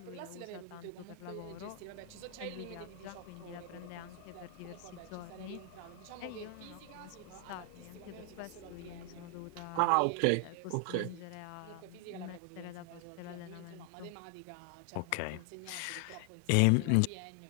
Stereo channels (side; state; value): both; different; correlation 0.00